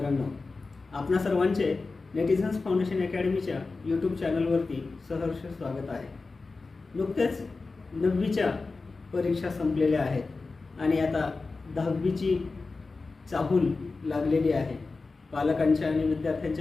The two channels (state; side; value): quieter; right; 3.9 dB